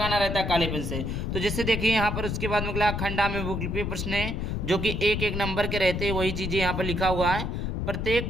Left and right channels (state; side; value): noise; left; rumble, 2 dB below the sound